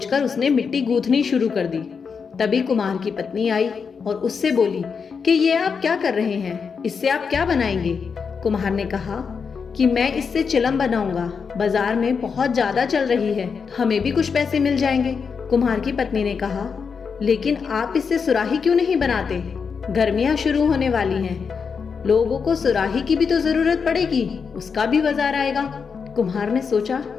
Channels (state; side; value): quieter; right; 5.8 dB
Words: उसने मिट्टी गूंथनी शुरू कर दी। तभी कुम्हार की पत्नी आई और उससे बोली कि ये आप क्या कर रहे हैं? इससे आप क्या बनाएंगे? कुम्हार ने कहा कि मैं इससे चिलम बनाऊंगा। बाजार में बहुत ज्यादा चल रही है, हमें भी कुछ पैसे मिल जाएंगे। कुम्हार की पत्नी ने कहा, लेकिन आप इससे सुराही क्यों नहीं बनाते? गर्मियां शुरू होने वाली हैं, लोगों को सुराही की भी तो जरूरत पड़ेगी, उसका भी बाजार आएगा। कुम्हार ने सोचा